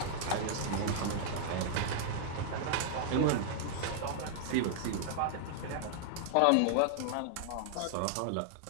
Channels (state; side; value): different; both; correlation -0.01